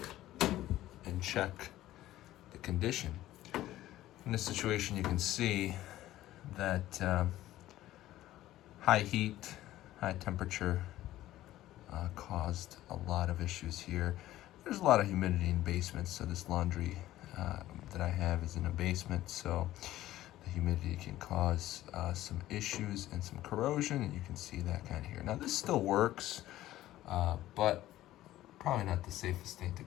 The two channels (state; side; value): quieter; right; 14.7 dB